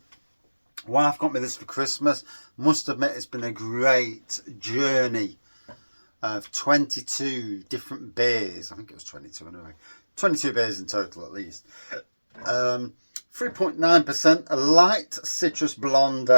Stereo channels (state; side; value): inverted; both; correlation -1.00